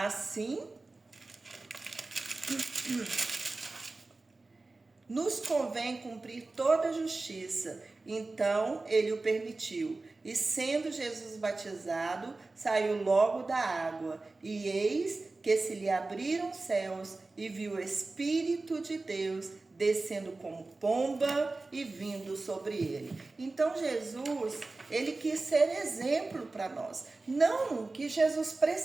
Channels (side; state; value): left; quieter; 3.4 dB